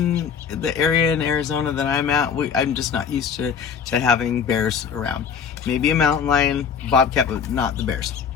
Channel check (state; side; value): quieter; right; 6.9 dB